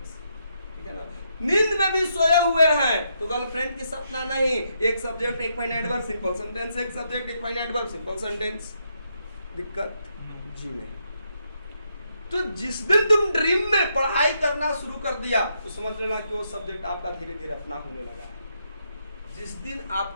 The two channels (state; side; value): inverted; both; correlation -0.78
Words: ठीक है ना? नींद में भी सोए हुए हैं तो गर्लफ्रेंड की सपना नहीं, एक सब्जेक्ट एक फाइनाइट वर्ब सिंपल सेंटेंस, एक सब्जेक्ट एक फाइनाइट वर्ब सिंपल सेंटेंस। दिक्कत जी नहीं। तो जिस दिन तुम ड्रीम में पढ़ाई करना शुरू कर दिया तो समझ लेना कि वो सब्जेक्ट आपका धीरे धीरे अपना होने लगा है। जिस दिन